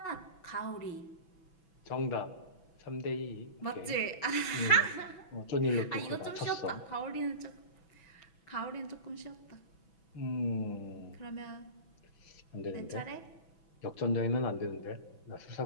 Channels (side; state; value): right; late; 6.1 ms